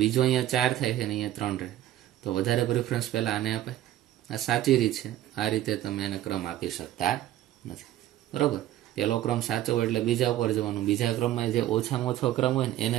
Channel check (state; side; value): quieter; left; 13.4 dB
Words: બીજો અહીંયા 4 થાય છે ને અહીંયા 3 રહે. તો વધારે પ્રિફરન્સ પહેલા આને અપાય. આ સાચી રીત છે. આ રીતે તમે એને ક્રમ આપી શકતા નથી, બરોબર. પહેલો ક્રમ સાચો હોય એટલે બીજા ઉપર જવાનું, બીજા ક્રમમાં જે ઓછામાં ઓછો ક્રમ હોય ને એને